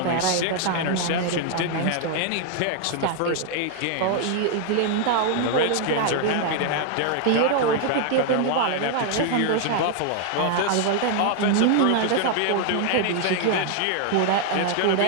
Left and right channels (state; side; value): different; both; correlation 0.00